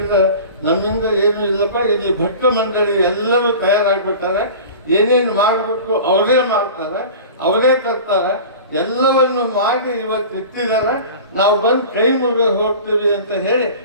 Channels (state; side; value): inverted; both; correlation -0.38